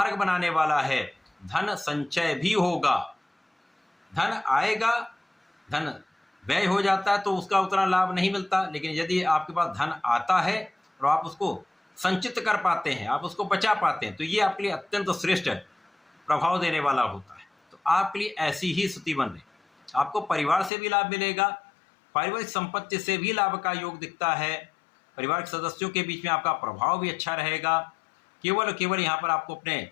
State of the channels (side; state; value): right; drops out; at 20.7 s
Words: बनाने वाला है। धन संचय भी होगा, धन आएगा, धन व्यय हो जाता है तो उसका उतना लाभ नहीं मिलता, लेकिन यदि आपके पास धन आता है और आप उसको संचित कर पाते हैं, आप उसको बचा पाते हैं, तो ये आपके लिए अत्यंत श्रेष्ठ प्रभाव देने वाला होता है। तो आपके लिए ऐसी ही स्थिति बन रही। आपको परिवार से भी लाभ मिलेगा, पारिवारिक संपत्ति से भी लाभ का योग दिखता है, परिवार के सदस्यों के बीच में आपका प्रभाव भी अच्छा रहेगा। केवल यहाँ पर आपको अपने